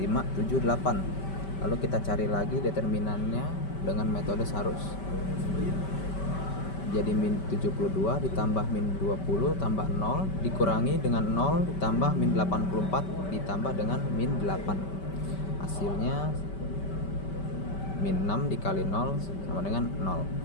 7, 8. Lalu kita cari lagi determinannya dengan metode Sarus. Jadi min 72 ditambah min 20 tambah 0 dikurangi dengan 0 ditambah min 84 ditambah dengan min 8. Hasilnya min 6 dikali 0 sama dengan 0.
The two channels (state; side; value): late; right; 5.2 ms